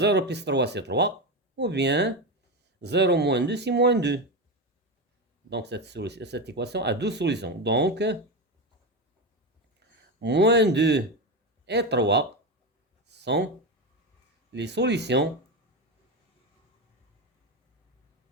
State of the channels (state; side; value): normal; both; correlation 0.16